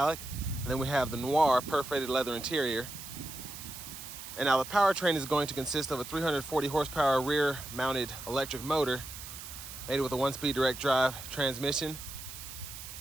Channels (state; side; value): noise; right; hiss, 11 dB below the sound